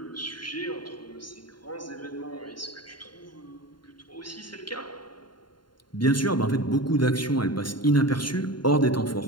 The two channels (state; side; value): late; right; 0.72 ms